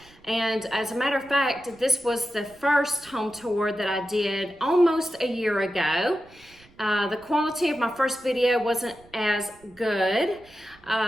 And as a matter of fact, this was the first home tour that I did almost a year ago. The quality of my first video wasn't as good,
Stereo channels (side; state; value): right; noise; rumble, 27 dB below the sound